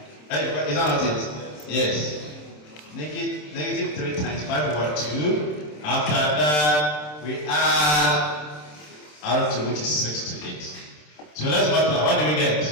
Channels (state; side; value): late; right; 27 ms